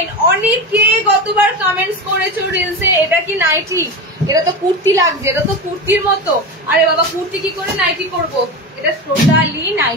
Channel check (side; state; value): both; normal; correlation 0.23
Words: অনেকে গতবার কমেন্টস করেছো রিলসে, এটা কি নাইটি? এটা তো কুর্তি লাগছে, এটা তো কুর্তির মতো। আরে বাবা কুর্তি কি করে নাইটি করবো? এটা টোটালি